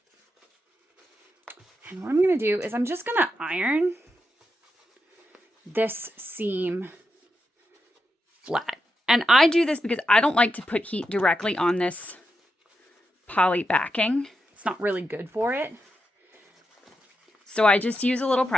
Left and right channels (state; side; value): normal; both; correlation 0.86